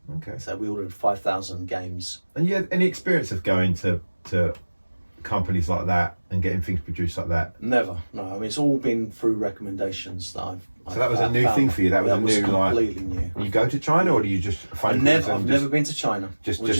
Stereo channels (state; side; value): inverted; both; correlation -1.00